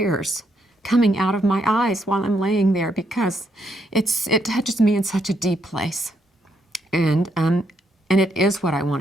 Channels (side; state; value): both; normal; correlation 0.76